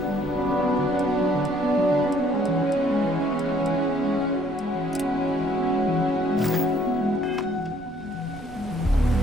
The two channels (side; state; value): both; normal; correlation 0.64